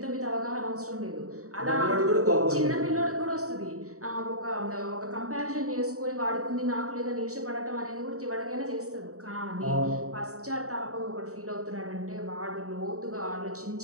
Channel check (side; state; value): left; late; 0.65 ms